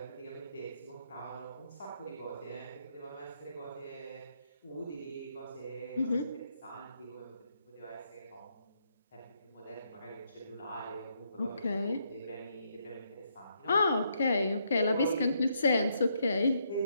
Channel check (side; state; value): both; inverted; correlation -0.76